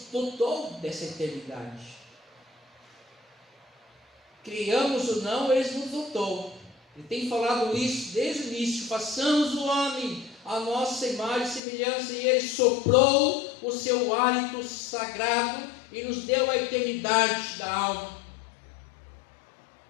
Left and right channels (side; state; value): right; drops out; at 11.6 s